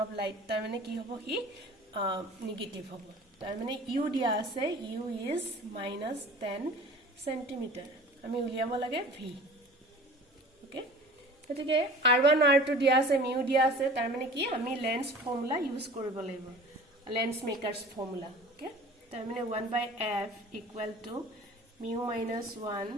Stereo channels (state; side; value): normal; both; correlation 0.43